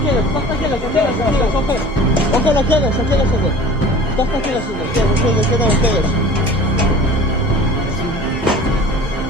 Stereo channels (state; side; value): normal; both; correlation 0.43